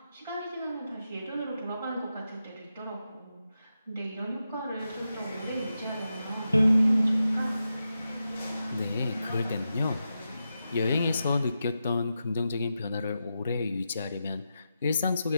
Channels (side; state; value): both; inverted; correlation -0.89